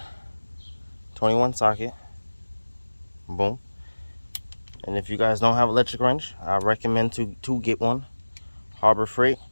socket, boom. And if you guys don't have electric wrench, I recommend to get one. Harbor Freight,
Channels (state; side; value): inverted; both; correlation -1.00